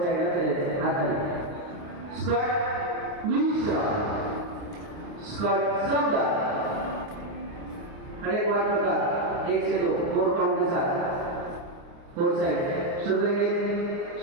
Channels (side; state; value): left; late; 28 ms